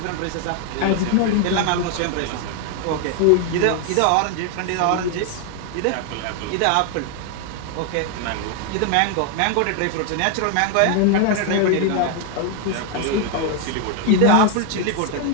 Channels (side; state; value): both; different; correlation 0.00